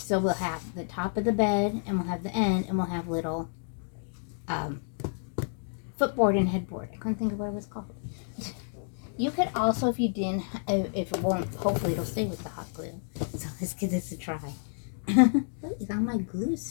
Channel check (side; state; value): right; silent; digital silence